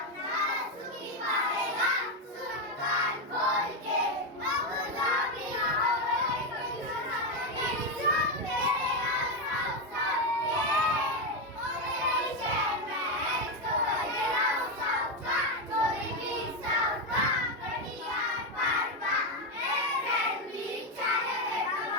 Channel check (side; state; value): both; normal; correlation 0.08